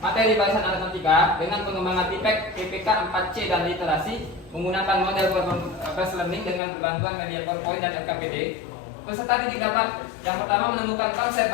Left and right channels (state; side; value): drops out; right; at 6.6 s